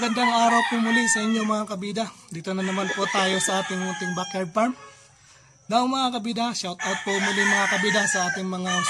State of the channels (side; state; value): both; identical; correlation 1.00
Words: araw po muli sa inyo mga kabida. Dito na naman po tayo sa ating munting backyard farm. Now mga kabida, shout out po muli mga kabida sa ating mga